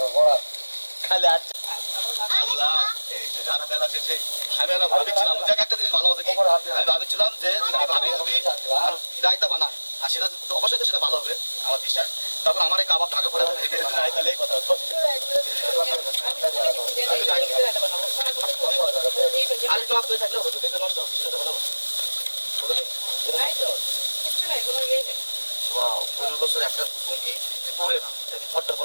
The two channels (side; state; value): both; inverted; correlation -1.00